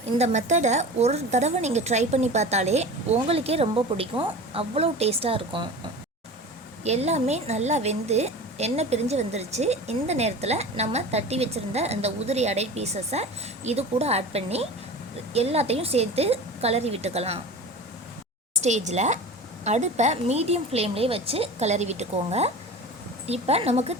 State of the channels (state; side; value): normal; both; correlation 0.34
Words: இந்த மெத்தடை ஒரு தடவை நீங்கள் ட்ரை பண்ணி பார்த்தாலே உங்களுக்கே ரொம்ப பிடிக்கும். அவ்வளோ டேஸ்ட்டாக இருக்கும். எல்லாமே நல்லா வெந்து எண்ணெய் பிரிஞ்சு வந்துருச்சு. இந்த நேரத்தில் நம்ம தட்டி வச்சுருந்த அந்த உதிரி அடை பீசஸை இது கூட ஆட் பண்ணி எல்லாத்தையும் சேர்த்து கிளறி விட்டுக்கலாம். ஸ்டேஜில் அடுப்பை மீடியம் ஃப்ளேம்லேயே வச்சு கிளறி விட்டுக்கோங்க. இப்போ நமக்கு